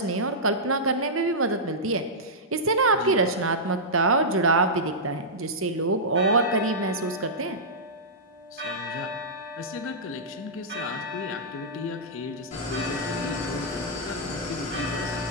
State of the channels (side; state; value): both; normal; correlation -0.13